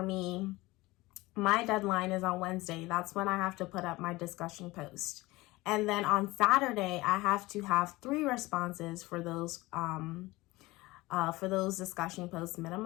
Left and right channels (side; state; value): right; quieter; 20.5 dB